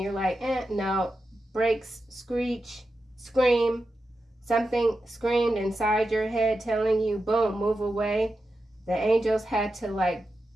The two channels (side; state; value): both; normal; correlation 0.90